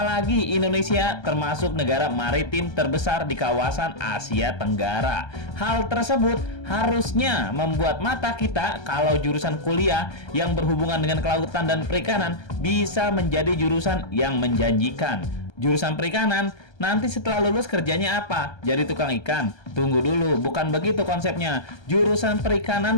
Indonesia termasuk negara maritim terbesar di kawasan Asia Tenggara. Hal tersebut harusnya membuat mata kita kalau jurusan kuliah yang berhubungan dengan kelautan dan perikanan bisa menjadi jurusan yang menjanjikan. Jurusan perikanan, nanti setelah lulus kerjanya apa? Jadi tukang ikan? Tunggu dulu, bukan begitu konsepnya. Jurusan perikanan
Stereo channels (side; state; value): right; late; 1.3 ms